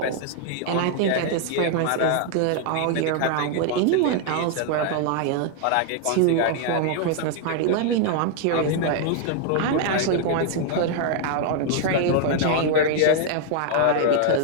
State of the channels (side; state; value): both; different; correlation 0.00